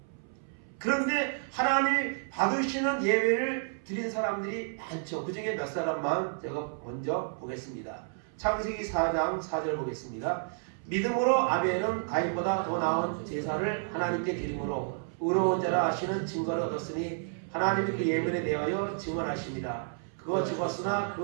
그런데 하나님이 받으시는 예배를 드린 사람들이 많죠. 그 중에 몇 사람만 제가 먼저 보겠습니다. 창세기 4장 4절 보겠습니다. 믿음으로 아벨은 가인보다 더 나은 제사를 하나님께 드림으로 의로운 자라 하시는 증거를 얻었으니 하나님이 그 예물에 대하여 증언하십니다. 그가 죽었으나 그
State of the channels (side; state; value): left; silent; 57 dB below the other